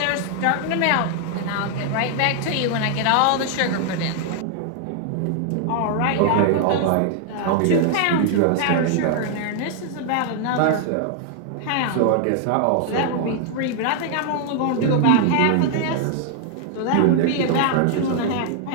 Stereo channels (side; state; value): both; different; correlation 0.00